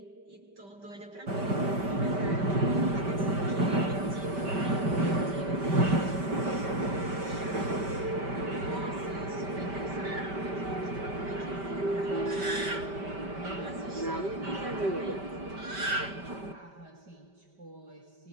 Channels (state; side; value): late; left; 5.1 ms